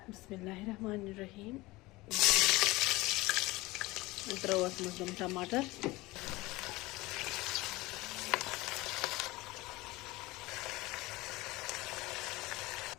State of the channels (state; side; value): quieter; right; 20.8 dB